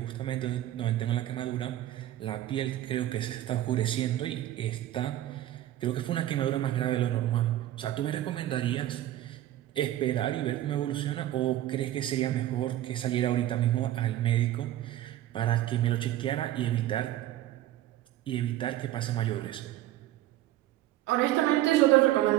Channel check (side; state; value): left; quieter; 13.8 dB